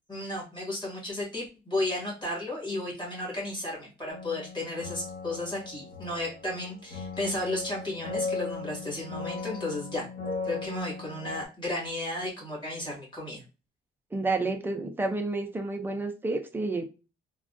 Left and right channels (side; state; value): both; normal; correlation 0.52